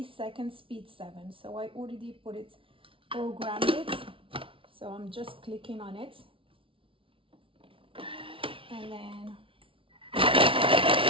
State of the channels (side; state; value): left; late; 0.25 ms